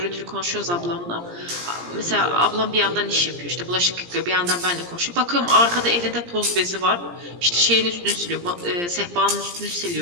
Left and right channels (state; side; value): late; left; 17 ms